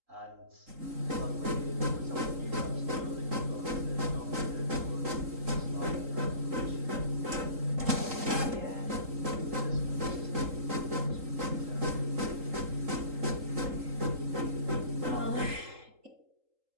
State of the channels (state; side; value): late; left; 3.8 ms